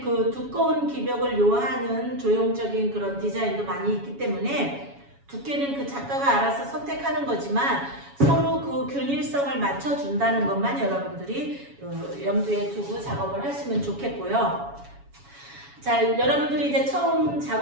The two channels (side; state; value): left; late; 7.2 ms